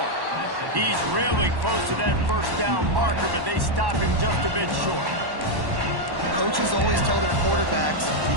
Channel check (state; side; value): late; left; 1.1 ms